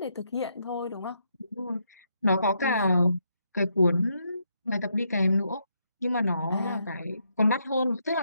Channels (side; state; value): both; inverted; correlation -0.78